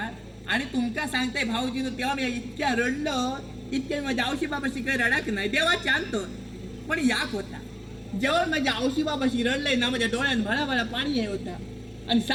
आणि तुमका सांगताय भाऊजीनं तेव्हा मी इतक्या रडलो इतक्या माझ्या औशी बाबाशी काही रडाक नाही देवाची आणतो पण याक होता. जेव्हा माझ्या औशी बाबाशी रडलंय ना माझ्या डोळ्यात भळाभळा पाणी आहे होता आणि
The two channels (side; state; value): both; identical; correlation 1.00